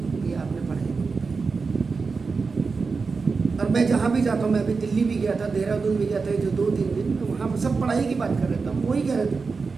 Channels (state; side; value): quieter; left; 4.6 dB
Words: ये आपने पढ़ाई में बिताई। और मैं जहाँ भी जाता हूँ, मैं अभी दिल्ली भी गया था, देहरादून भी गया था, जो 2-3 दिन, तो वहाँ पर सब पढ़ाई की बात कर रहे थे। हम वही कह रहे थे,